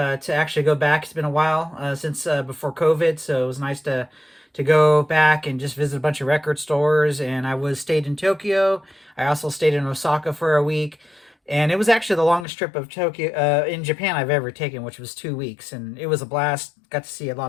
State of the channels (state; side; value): drops out; right; at 12.5 s